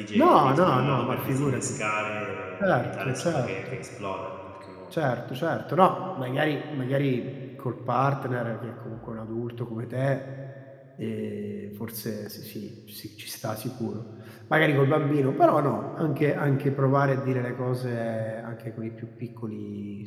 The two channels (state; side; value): identical; both; correlation 1.00